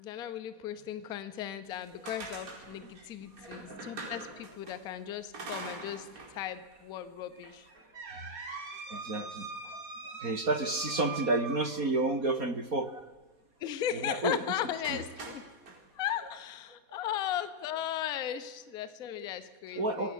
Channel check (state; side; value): late; left; 4.2 ms